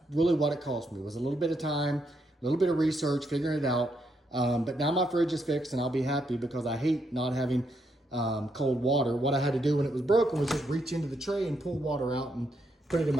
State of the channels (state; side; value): normal; both; correlation 0.78